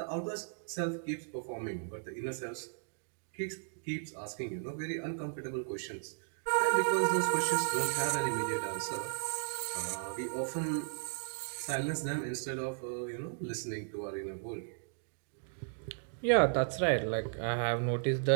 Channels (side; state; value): left; silent; digital silence